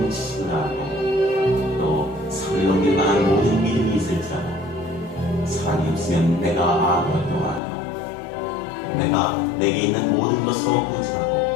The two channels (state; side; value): drops out; right; at 7.6 s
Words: 지식을 알고 또 산을 넘길 만한 모든 믿음이 있을지라도 사람이 없으면 내가 아무것도 아니오. 내가 내게 있는 모든 것으로 부진하고